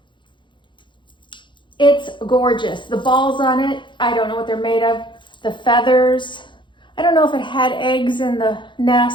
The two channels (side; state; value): right; late; 0.23 ms